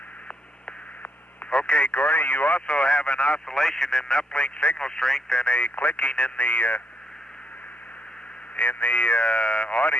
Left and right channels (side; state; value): both; normal; correlation 0.75